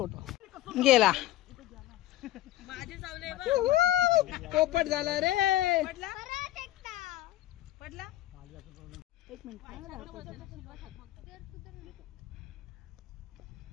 गेला पोपट झाला रे पडला एक मिनिट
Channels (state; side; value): quieter; right; 15.1 dB